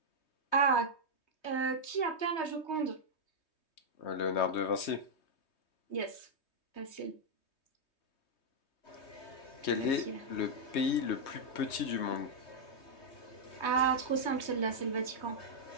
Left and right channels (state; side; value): late; right; 3.2 ms